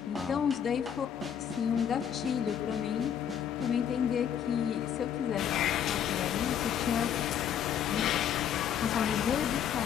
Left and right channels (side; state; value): right; quieter; 8.9 dB